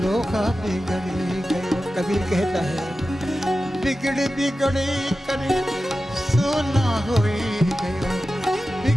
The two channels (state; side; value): normal; both; correlation 0.93